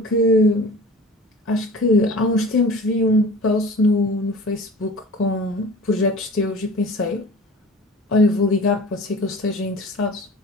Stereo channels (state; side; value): normal; both; correlation 0.41